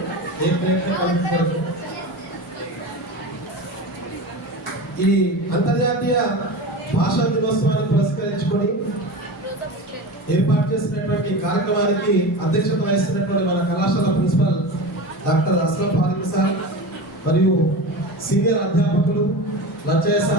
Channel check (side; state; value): both; normal; correlation 0.28